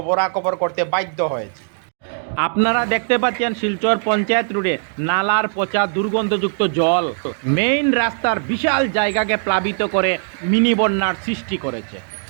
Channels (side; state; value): left; silent; digital silence